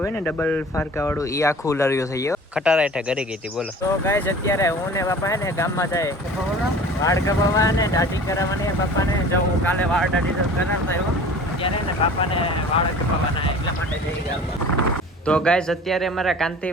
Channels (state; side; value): normal; both; correlation 0.43